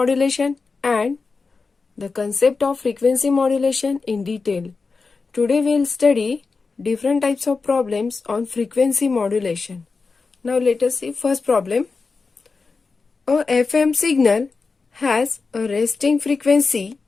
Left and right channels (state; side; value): quieter; right; 4.4 dB